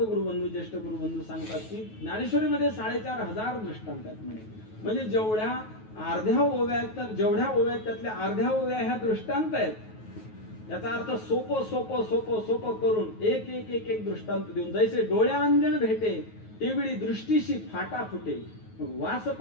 गुरुबंधू, ज्येष्ठ गुरुबंधू सांगतात की ज्ञानेश्वरीमध्ये 4500 दृष्टांत आहेत म्हणे. म्हणजे जेवढ्या अर्ध्या ओव्या आहेत, तर जेवढ्या ओव्या आहेत त्यातल्या अर्ध्या ओव्या ह्या दृष्टांत आहेत. याचा अर्थ सोपं सोपं सोपं सोपं करून एक एक एक एक दृष्टांत देऊन, जैसे डोळ्या अंजन भेटे तेवढी दृष्टीशी फाटा फुटे, वास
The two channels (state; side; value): late; right; 9.3 ms